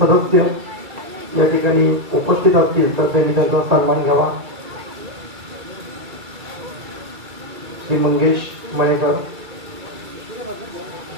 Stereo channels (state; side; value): late; left; 2.3 ms